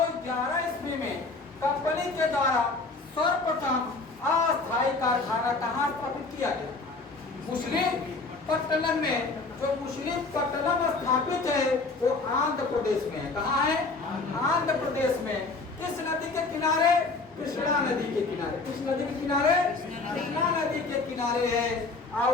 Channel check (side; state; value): right; quieter; 3.7 dB